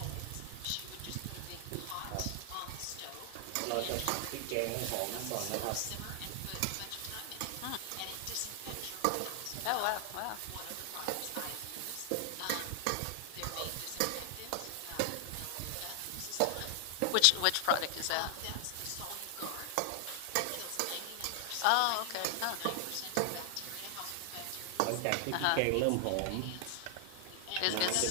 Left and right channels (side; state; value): both; different; correlation 0.00